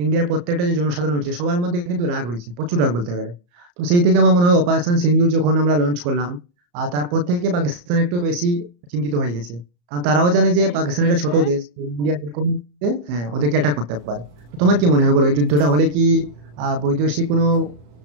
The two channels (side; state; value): left; late; 34 ms